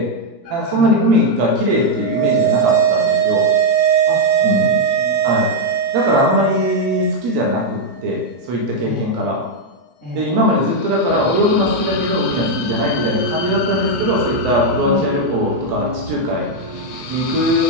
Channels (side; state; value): left; late; 10 ms